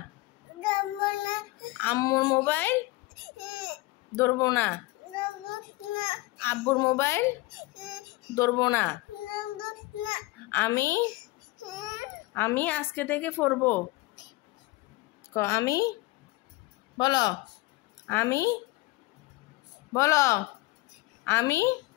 আম্মুর মোবাইল ধরবো না। আব্বুর মোবাইল ধরবো না। আমি আজকে থেকে পড়বো। আমি বলো, আমি বলো, আমি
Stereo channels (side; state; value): right; quieter; 20.8 dB